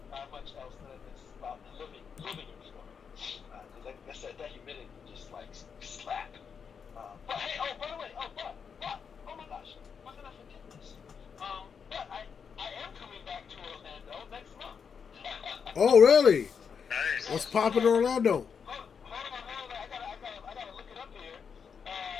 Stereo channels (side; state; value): right; quieter; 6.5 dB